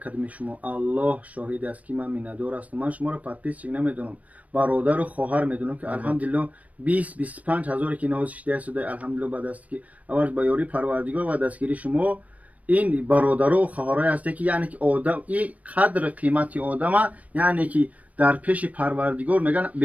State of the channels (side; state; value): left; late; 0.069 ms